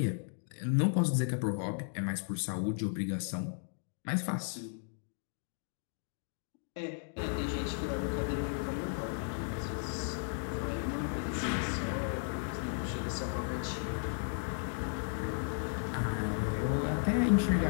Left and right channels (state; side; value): silent; right; digital silence